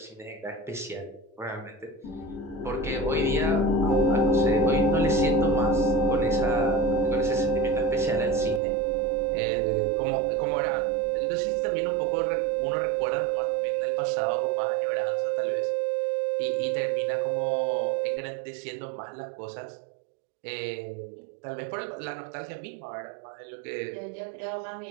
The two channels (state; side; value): drops out; left; at 8.6 s